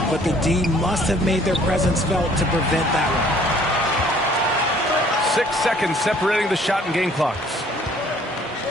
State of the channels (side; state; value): both; normal; correlation 0.57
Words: but the D must have made their presence felt to prevent that one. 6 seconds separating the shot and game clocks.